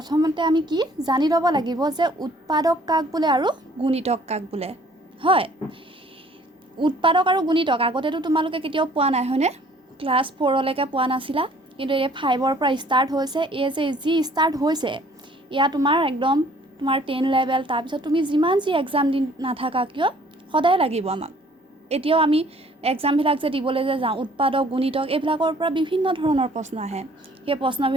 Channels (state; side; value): normal; both; correlation 0.57